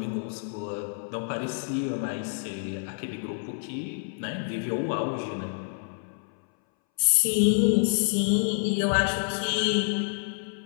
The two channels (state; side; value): silent; right; 59 dB below the other